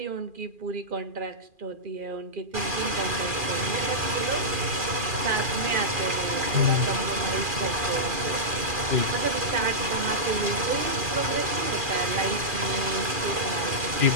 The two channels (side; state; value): left; late; 2.4 ms